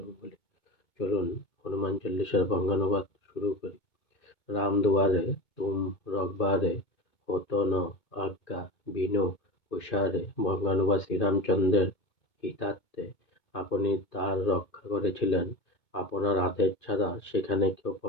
চলুন হনুমান চল্লিশার বঙ্গানুবাদ শুরু করি। রাম দুয়ারে তুম রঘবারে হতো ন আজ্ঞা বিনু হুঁশিয়ারে। বঙ্গানুবাদ শ্রীরামচন্দ্রের হিতার্থে আপনি তার রক্ষা করেছিলেন। আপনার আদেশ ছাড়া সেখানে কেউ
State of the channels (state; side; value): late; right; 2.2 ms